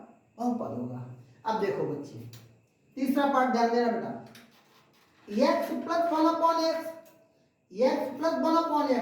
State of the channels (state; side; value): identical; both; correlation 1.00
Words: बहुपद होगा। अब देखो बच्चे, तीसरा पार्ट ध्यान देना बेटा। x plus 1/x, x plus